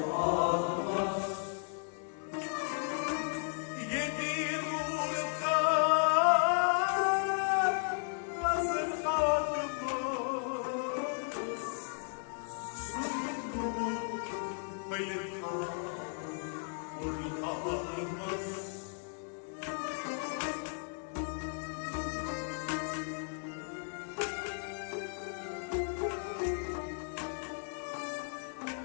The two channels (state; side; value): silent; right; 54 dB below the other